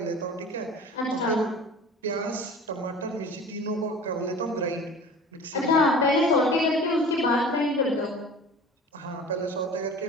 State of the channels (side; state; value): both; normal; correlation 0.40